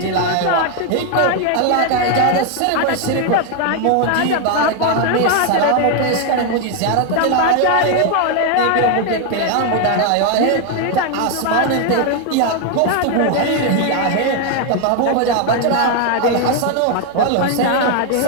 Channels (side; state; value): both; different; correlation 0.01